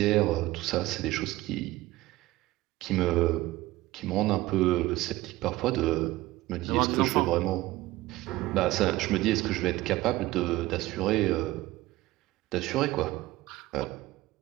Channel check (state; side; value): quieter; left; 17.9 dB